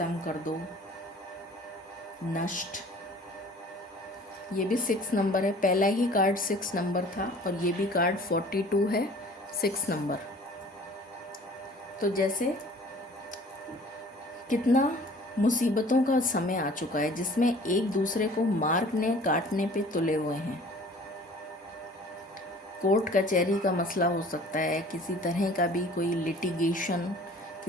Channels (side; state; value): both; normal; correlation 0.49